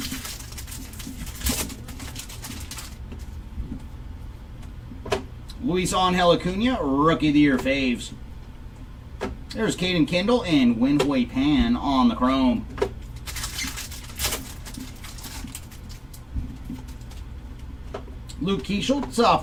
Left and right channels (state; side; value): identical; both; correlation 1.00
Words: Luis Angel Acuna, Rookie of the Year faves. There's Caden Kendall and Wenhui Pan on the chrome. Luke Keishel, top